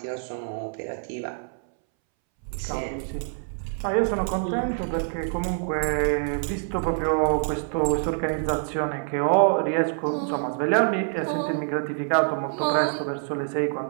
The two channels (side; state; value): left; silent; 61 dB below the other